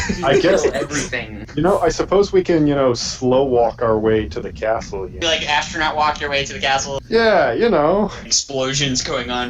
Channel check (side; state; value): both; identical; correlation 1.00